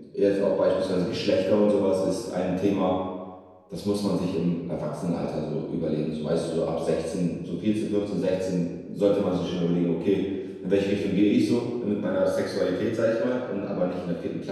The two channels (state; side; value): identical; both; correlation 1.00